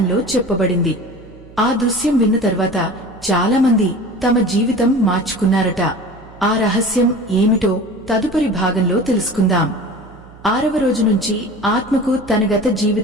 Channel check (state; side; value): noise; right; hum, 22 dB below the sound